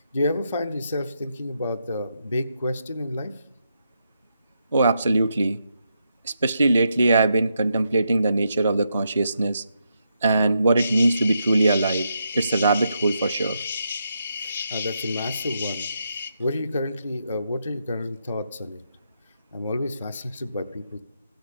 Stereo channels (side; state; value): both; inverted; correlation -0.81